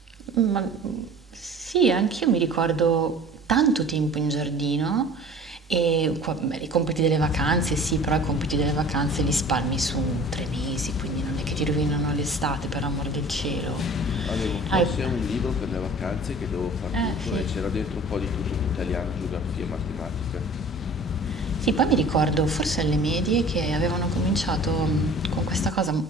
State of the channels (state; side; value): normal; both; correlation 0.44